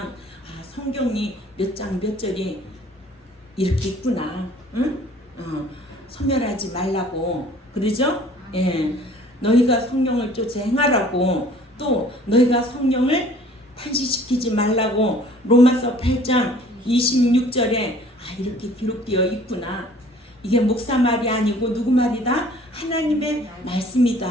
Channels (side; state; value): both; normal; correlation 0.53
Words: 성경이 몇 장 몇 절이 이렇게 있구나. 응? 소멸하지 말라고 그러죠? 예. 너희가 성령을 쫓아 행하라고, 또 너희가 성령을 탄식시키지 말라고 로마서 8장 26절에 이렇게 기록되어 있구나. 이게 목사 말이 아니고 누구 말이다? 하나님의